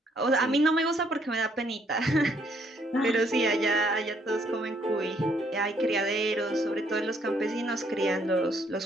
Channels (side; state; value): both; normal; correlation 0.68